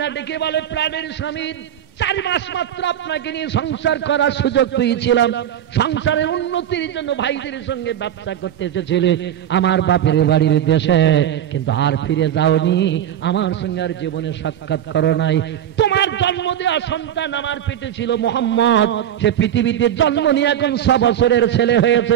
ডেকে বলে, প্রাণের স্বামী, 4 মাস মাত্র আপনাকে নিয়ে সংসার করার সুযোগ পেয়েছিলাম, সংসারের উন্নতির জন্য ভাইদের সঙ্গে ব্যবসা করতে এসেছিলে আমার বাপের বাড়ির দেশে, কিন্তু আর ফিরে যাওনি, আমার সঙ্গে আর জীবনে সাক্ষাৎ করো নাই। তোমার জন্ম দেওয়া সন্তান আমার পেটে ছিল মুহাম্মদ, সে পৃথিবীতে জন্ম নিয়ে এখন 6 বছরের ছেলে হয়েছে।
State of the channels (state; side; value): quieter; left; 10.6 dB